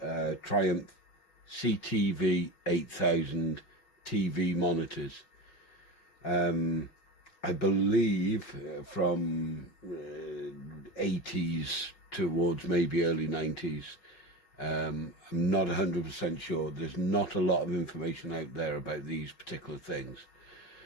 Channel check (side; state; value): right; late; 5.4 ms